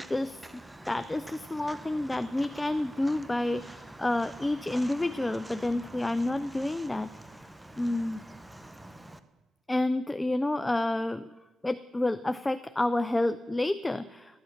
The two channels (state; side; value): normal; both; correlation 0.98